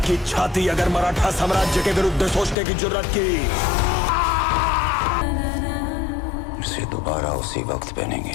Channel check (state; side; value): drops out; right; at 2.6 s